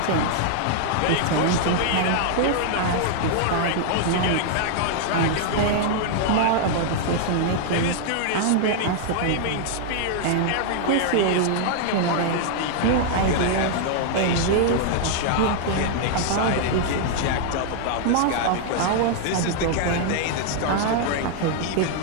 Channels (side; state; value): both; different; correlation -0.01